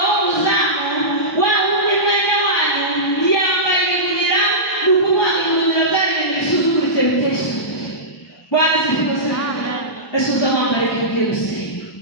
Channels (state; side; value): normal; both; correlation -0.16